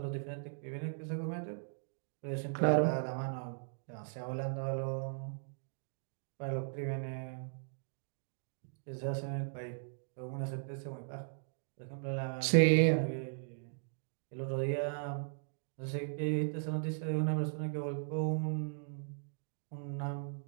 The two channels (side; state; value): left; silent; digital silence